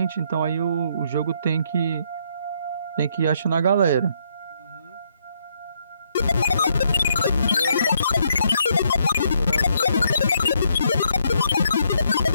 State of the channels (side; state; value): both; inverted; correlation -0.72